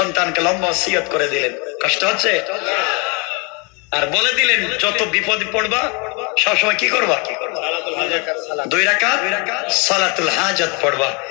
লম্বা ওসিয়ত করে দিলেন, কষ্ট হচ্ছে, আর বলে দিলেন যত বিপদ পড়বা সবসময় কি করবা, 2 রাকাত সালাতুল হাজত পড়বা,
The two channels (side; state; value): right; quieter; 31.4 dB